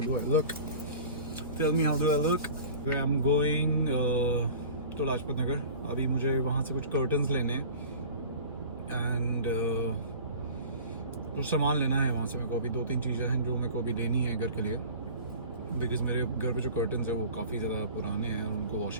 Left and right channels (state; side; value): inverted; both; correlation -0.40